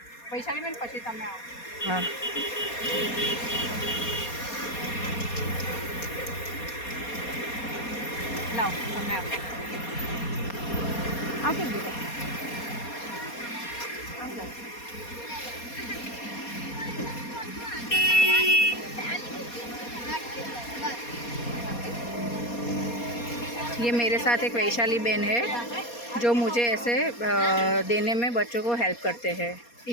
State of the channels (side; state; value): right; late; 4.2 ms